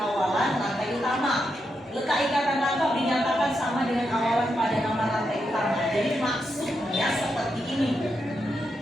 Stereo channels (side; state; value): both; normal; correlation 0.84